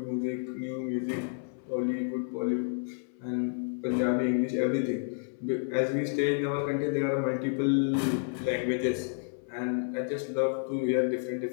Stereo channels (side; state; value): right; silent; 58 dB below the other